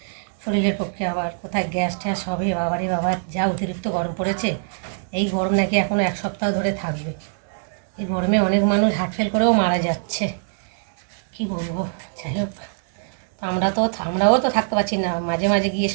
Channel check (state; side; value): silent; left; digital silence